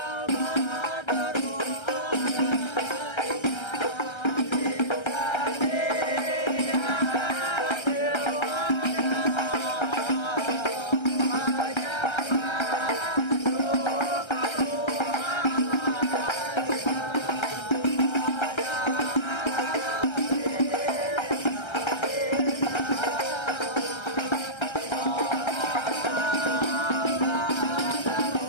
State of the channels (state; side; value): late; right; 1.3 ms